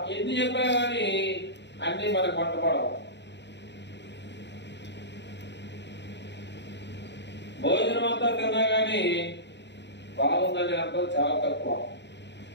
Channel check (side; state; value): right; late; 0.51 ms